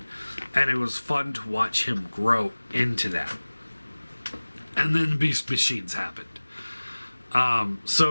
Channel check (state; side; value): inverted; both; correlation -1.00